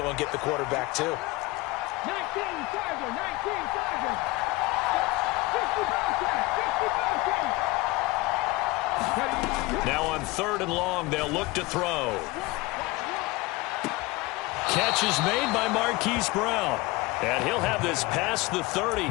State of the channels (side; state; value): right; quieter; 21.2 dB